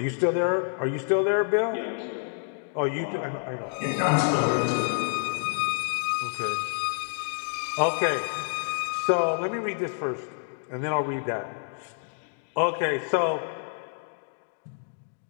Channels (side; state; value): right; silent; digital silence